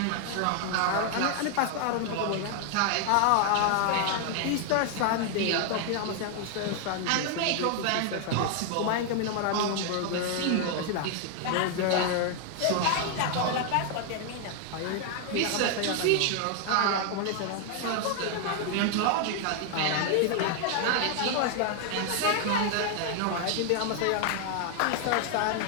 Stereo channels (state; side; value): different; both; correlation 0.00